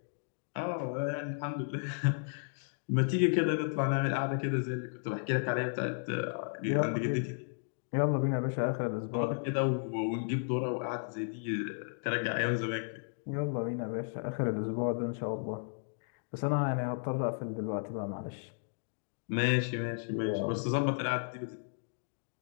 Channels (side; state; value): right; silent; digital silence